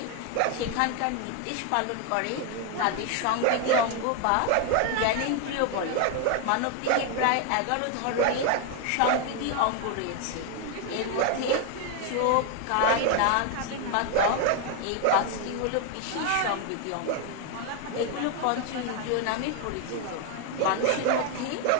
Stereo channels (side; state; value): both; different; correlation 0.01